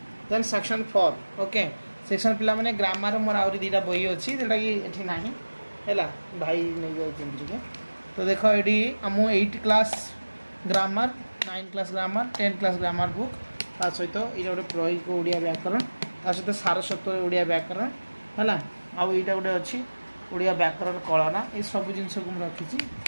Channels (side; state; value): both; inverted; correlation -1.00